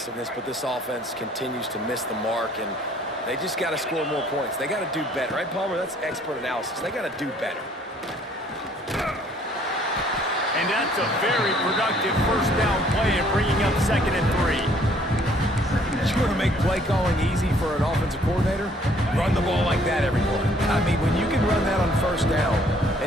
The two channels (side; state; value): both; normal; correlation 0.60